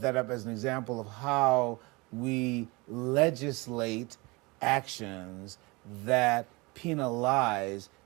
that up as an example of how we legislate actions that penalize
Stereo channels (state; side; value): quieter; left; 25.5 dB